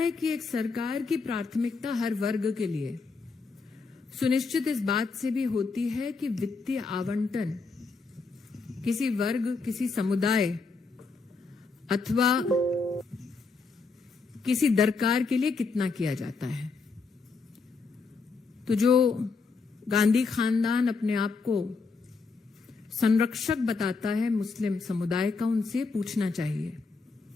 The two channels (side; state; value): right; quieter; 4.4 dB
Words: कि एक सरकार की प्राथमिकता हर वर्ग के लिए सुनिश्चित इस बात से भी होती है कि वित्तीय आवंटन किसी वर्ग, किसी समुदाय अथवा किसी दरकार के लिए कितना किया जाता है। तो जो गांधी खानदान अपने आप को संरक्षक बताता है मुस्लिम समुदाय का, उनसे पूछना चाहिए